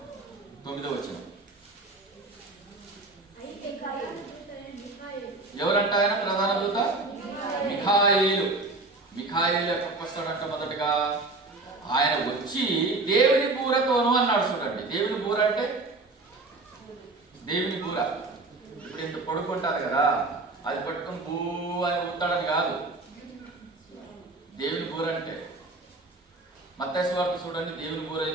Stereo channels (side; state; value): left; quieter; 3.2 dB